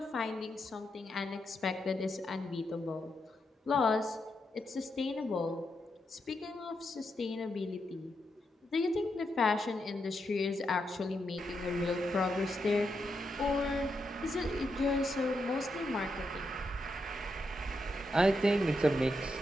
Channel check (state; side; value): normal; both; correlation 0.83